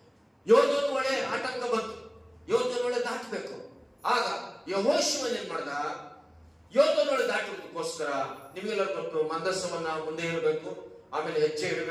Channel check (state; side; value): identical; both; correlation 1.00